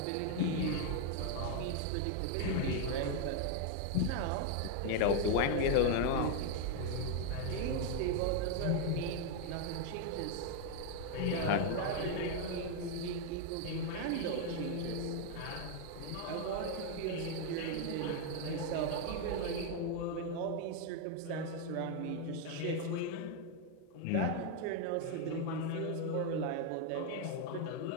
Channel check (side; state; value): both; different; correlation 0.01